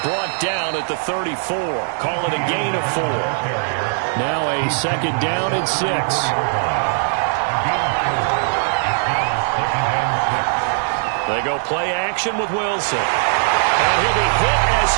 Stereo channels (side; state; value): left; silent; digital silence